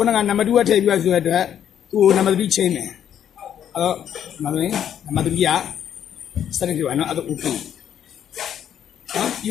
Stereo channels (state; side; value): quieter; right; 9.7 dB